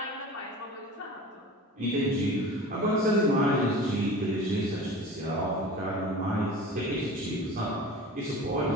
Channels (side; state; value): both; normal; correlation 0.38